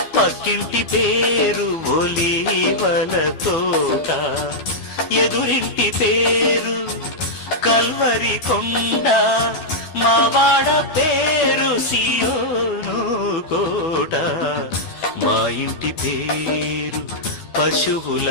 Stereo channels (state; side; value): late; right; 12 ms